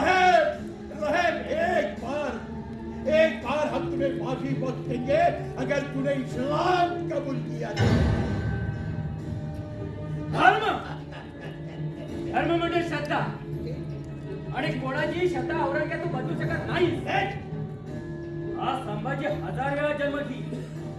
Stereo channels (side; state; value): both; identical; correlation 1.00